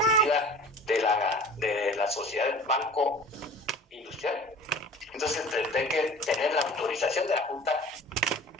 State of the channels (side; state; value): both; normal; correlation 0.42